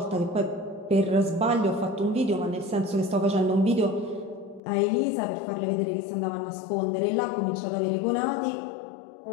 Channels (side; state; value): right; drops out; at 4.6 s